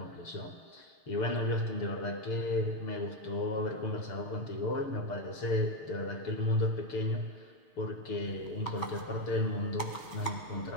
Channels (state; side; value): late; right; 6.8 ms